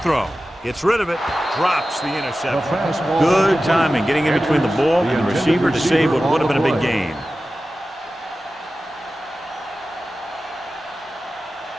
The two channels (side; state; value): both; normal; correlation 0.94